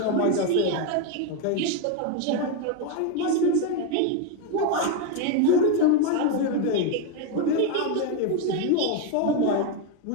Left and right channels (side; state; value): both; different; correlation 0.02